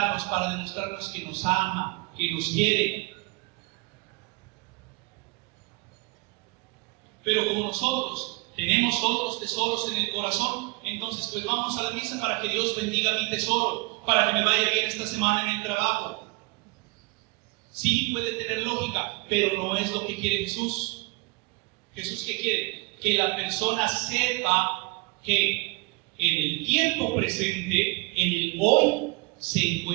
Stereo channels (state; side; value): quieter; left; 25.7 dB